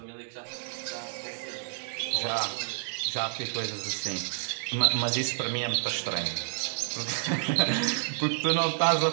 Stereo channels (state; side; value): silent; left; digital silence